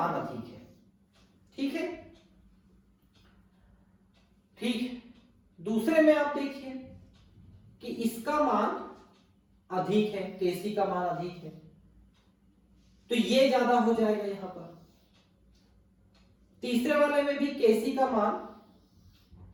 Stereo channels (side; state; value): both; identical; correlation 1.00